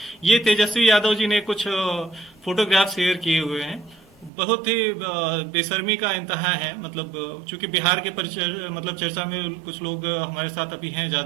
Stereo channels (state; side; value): drops out; left; at 4.3 s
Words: ये तेजस्वी यादव जी ने कुछ फोटोग्राफ शेयर किए हुए हैं, बहुत ही बेशर्मी का इंतहा है। मतलब चूंकि बिहार के मतलब चर्चा में कुछ लोग हमारे साथ अभी हैं